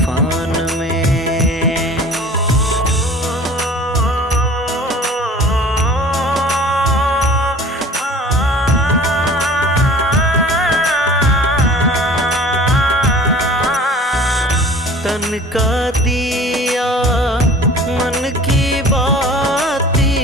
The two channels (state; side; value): normal; both; correlation 0.45